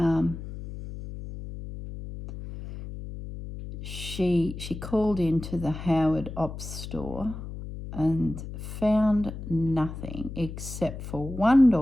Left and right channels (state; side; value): noise; left; hum, 10 dB below the sound